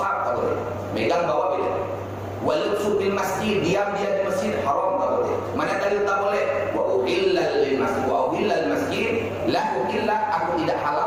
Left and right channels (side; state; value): both; identical; correlation 1.00